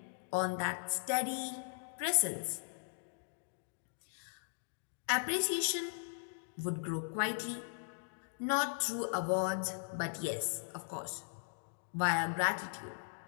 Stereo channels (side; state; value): right; silent; digital silence